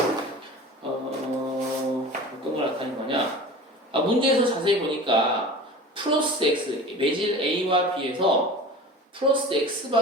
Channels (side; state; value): both; normal; correlation 0.37